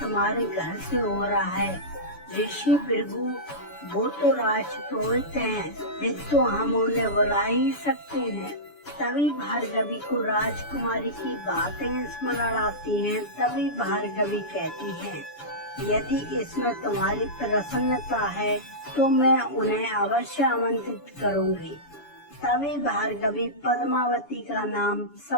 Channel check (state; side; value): late; right; 7.0 ms